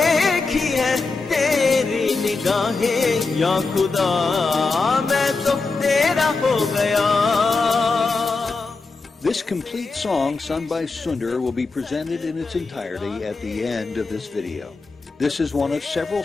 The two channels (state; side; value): quieter; right; 4.0 dB